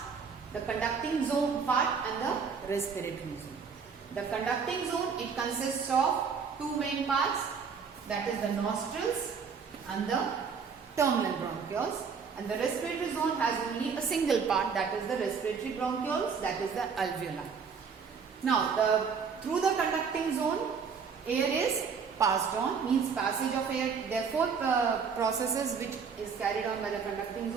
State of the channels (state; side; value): quieter; left; 6.0 dB